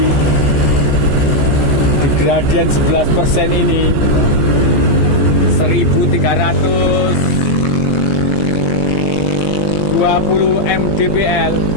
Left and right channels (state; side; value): late; right; 15 ms